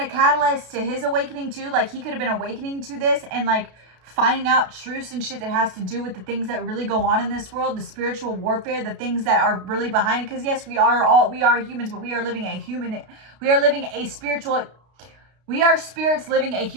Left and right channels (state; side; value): late; left; 32 ms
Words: catalyst to his awakening too. Like he could have been awakening to this and like finding out truths and shit that has to do with the things that really go on in this world, the spiritual warfare, the things that are really behind it. Because yes, we are humans, but we are living we are spirits living a